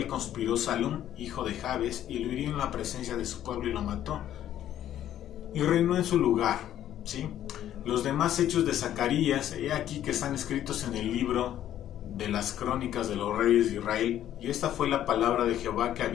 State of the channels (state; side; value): quieter; right; 11.5 dB